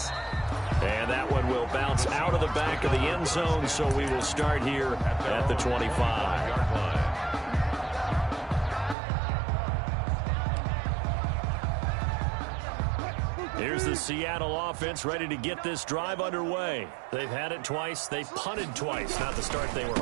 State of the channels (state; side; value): drops out; left; at 9.0 s